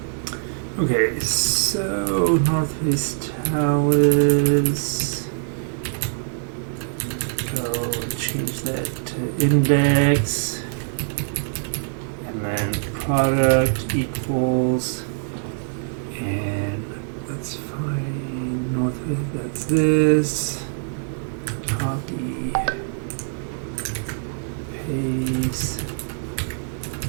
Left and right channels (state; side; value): silent; left; 63 dB below the other